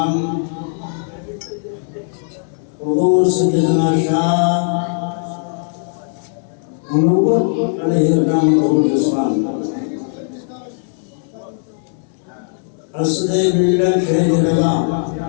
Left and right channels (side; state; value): right; silent; 63 dB below the other